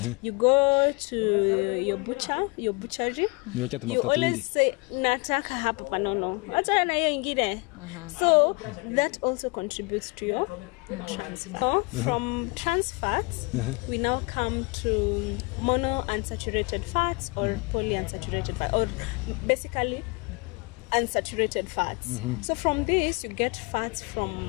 You go to your butchery, you always say nataka hapa panono, acha na hiyo ingine. So that also contributes to your trans fat. So from trans fats, we now come to monounsaturated fats or polyunsaturated fats, or basically unsaturated fats. So from this you get fats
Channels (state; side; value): quieter; right; 29.1 dB